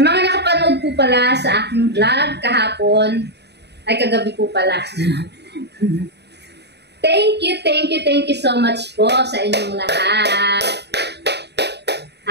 mga nakapanood po pala sa aking vlog kahapon, ay kagabi po pala. Thank you so much po sa inyong lahat.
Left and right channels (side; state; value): left; late; 0.49 ms